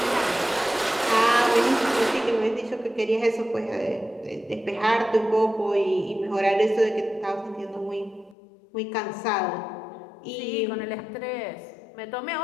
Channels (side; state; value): right; drops out; at 8.3 s